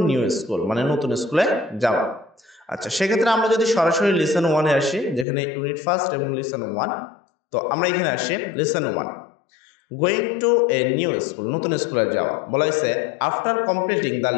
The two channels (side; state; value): right; drops out; at 5.2 s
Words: নিউ স্কুল, মানে নতুন স্কুলে যাওয়া। আচ্ছা, সেক্ষেত্রে আমরা যদি সরাসরি লিসন 1 এ আসি, যেখানে ইউনিট ফার্স্ট এবং লিসন 1, তো আমরা এখানে আসি lesson 1, going to a new school, নতুন স্কুলে যাওয়া। বলা হয়েছে after completing the